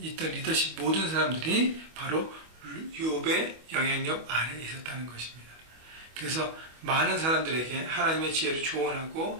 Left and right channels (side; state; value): left; late; 25 ms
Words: 있던 리더십 모든 사람들이 바로 욥의 영향력 아래에 있었다는 것입니다. 그래서 많은 사람들에게 하나님의 지혜를 조언하고